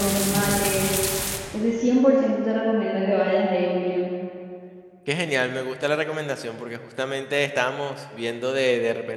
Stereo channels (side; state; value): both; identical; correlation 1.00